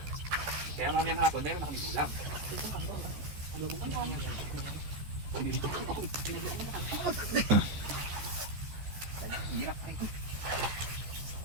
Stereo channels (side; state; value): left; late; 14 ms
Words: Kaya mamayang hapon, meron na kami ulam. Hirap ay ko.